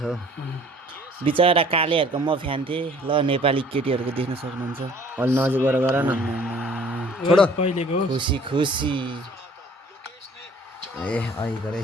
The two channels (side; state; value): both; normal; correlation 0.53